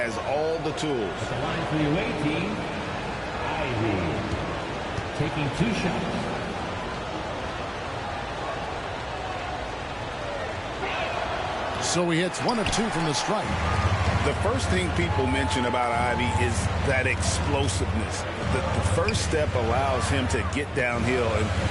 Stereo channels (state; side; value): identical; both; correlation 1.00